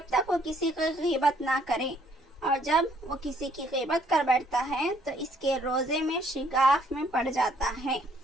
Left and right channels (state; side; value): normal; both; correlation 0.65